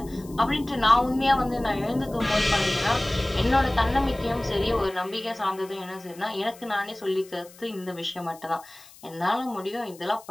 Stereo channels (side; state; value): left; noise; hiss, 22 dB below the sound